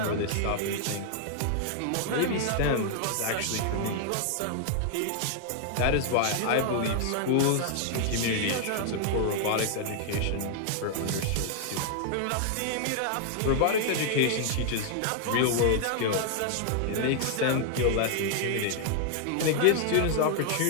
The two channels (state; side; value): different; both; correlation 0.00